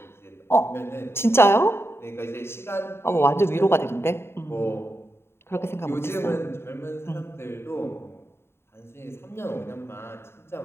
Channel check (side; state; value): right; late; 0.12 ms